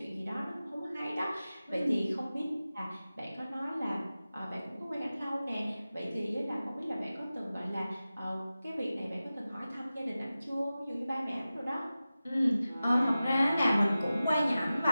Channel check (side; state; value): both; inverted; correlation -0.95